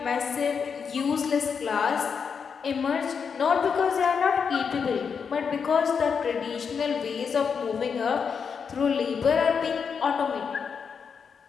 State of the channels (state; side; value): quieter; right; 6.3 dB